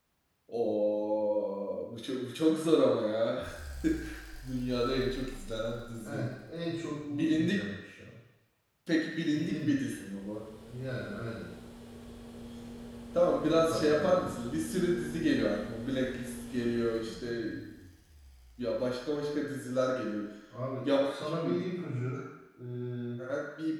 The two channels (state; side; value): identical; both; correlation 1.00